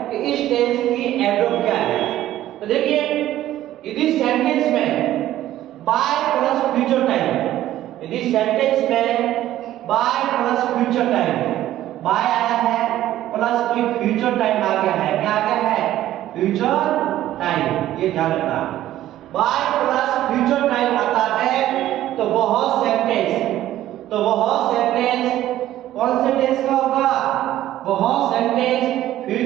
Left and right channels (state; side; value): quieter; left; 13.5 dB